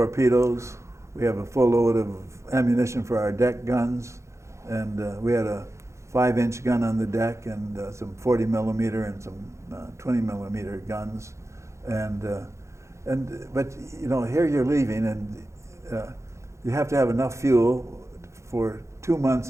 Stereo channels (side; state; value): left; late; 0.14 ms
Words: We have a full load of ammunition for our deck guns, and we had a 5-inch gun on the deck, and some 40 millimeter and some 20 millimeter guns, but you know, here you're leaving, and you have to have enough fuel for 2 months